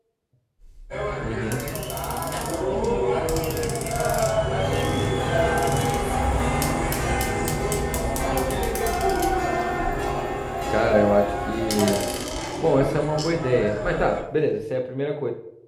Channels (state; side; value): identical; both; correlation 1.00